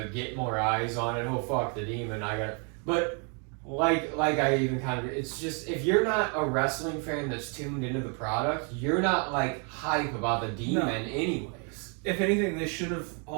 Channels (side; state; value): left; quieter; 37.6 dB